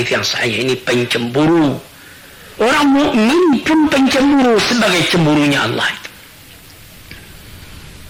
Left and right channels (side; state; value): both; identical; correlation 1.00